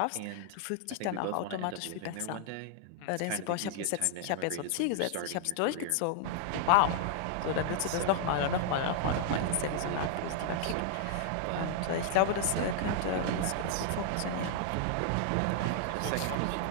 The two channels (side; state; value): both; different; correlation -0.01